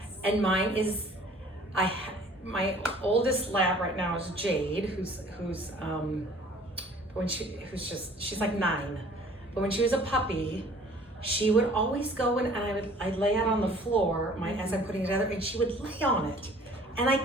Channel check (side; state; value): both; normal; correlation 0.52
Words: And mine is, my oldest lab right now is Jade, who's she's like 9. But when she was a puppy, she would always go and I'd lay out on the floor as I'm putting it together, and she would lay on it. And I